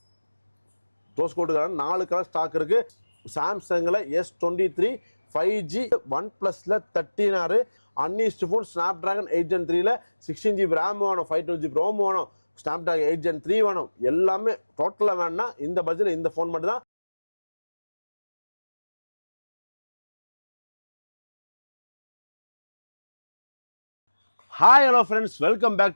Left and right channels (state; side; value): inverted; both; correlation -1.00